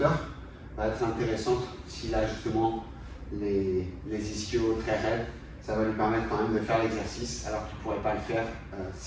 va être intéressante s'il a justement les ischios très raides. Ça va lui permettre quand même de faire l'exercice alors qu'il ne pourrait pas le faire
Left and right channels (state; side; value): identical; both; correlation 1.00